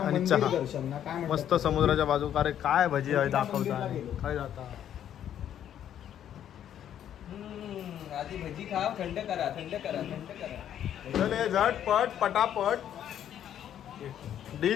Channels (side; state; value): right; quieter; 10.2 dB